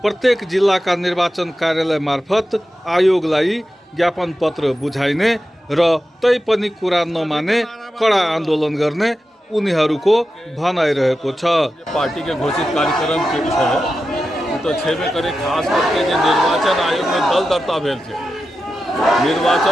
प्रत्येक जिल्लाका निर्वाचन कार्यालय मार्फत आयोगलाई ज्ञापन पत्र बुझाइने र तै पनि कुरा नमाने कडा आन्दोलन गर्ने उनीहरूको भनाइरहेको छ। पार्टी के घोषित कार्यक्रम के विषय तो छेबे करे, खास करके जो निर्वाचन आयोग में दल दर्ता भेल छे,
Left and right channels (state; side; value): normal; both; correlation 0.91